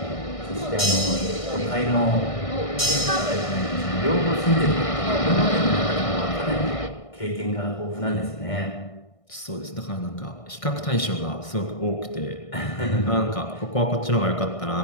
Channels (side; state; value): right; late; 1.6 ms